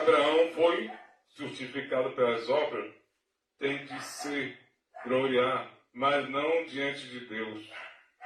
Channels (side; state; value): both; identical; correlation 1.00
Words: foi justificado pelas obras, tem de se gloriar, mas não diante de Deus.